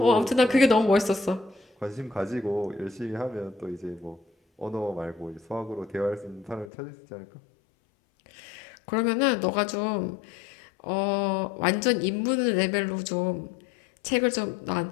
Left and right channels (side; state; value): right; drops out; at 6.7 s